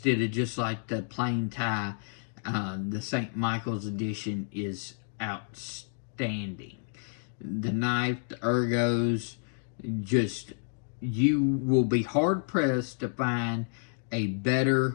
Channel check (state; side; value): silent; right; digital silence